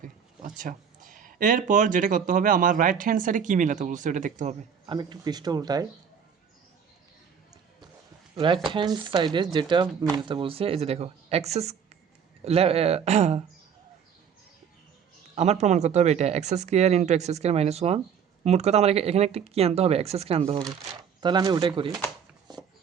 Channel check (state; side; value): quieter; left; 7.4 dB